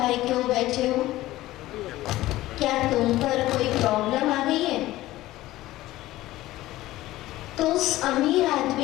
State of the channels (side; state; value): right; quieter; 16.4 dB